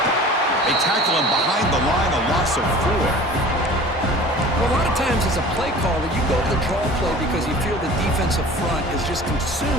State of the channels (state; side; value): normal; both; correlation 0.43